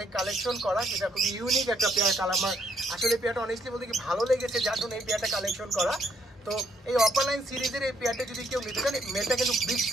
কালেকশন করা, সেটা খুবই ইউনিক একটা পেয়ার। আমার আসলে পেয়ারটা অনেস্টলি বলতে কি ভালো লেগেছে, যার জন্য এই পেয়ারটা কালেকশন করা। তো এই অপালাইন সিরিজের এই পেয়ারটা যদি কেউ নিতে চান, মেলটা কিন্তু বিগ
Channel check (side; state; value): both; normal; correlation 0.71